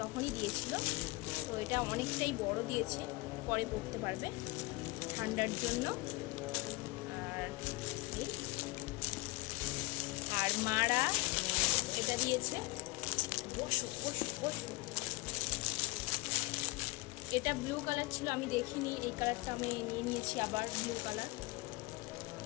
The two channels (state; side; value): quieter; right; 23.6 dB